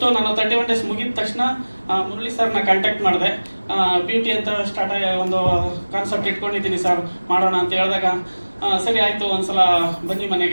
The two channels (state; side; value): inverted; both; correlation -1.00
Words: ನಾನು 31 ಡೇಸ್ ಮುಗಿದ ತಕ್ಷಣ ಮುರಳಿ ಸರ್ನ ಕಾಂಟ್ಯಾಕ್ಟ್ ಮಾಡಿದೆ. ಬ್ಯೂಟಿ ಅಂತ ಸ್ಟಾರ್ಟ್ ಆಗಿ ಒಂದು ಕಾನ್ಸೆಪ್ಟ್ ಇಟ್ಕೊಂಡಿದ್ದೀನಿ ಸರ್, ಮಾಡೋಣ ಅಂತ ಹೇಳಿದಾಗ ಸರಿ ಆಯಿತು, ಒಂದ್ಸಲ ಬನ್ನಿ